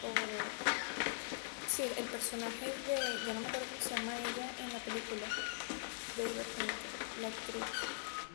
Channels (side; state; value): right; silent; digital silence